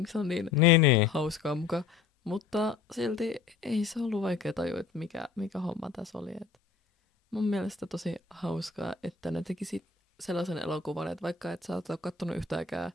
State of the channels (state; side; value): quieter; right; 5.2 dB